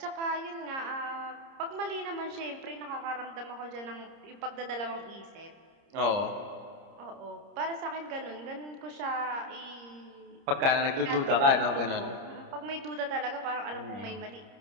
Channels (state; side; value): late; left; 30 ms